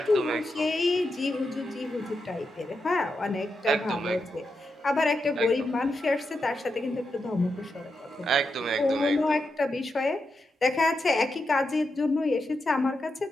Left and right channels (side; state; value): both; normal; correlation 0.86